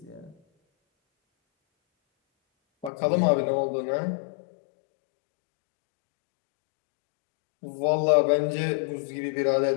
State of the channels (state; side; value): drops out; right; at 2.9 s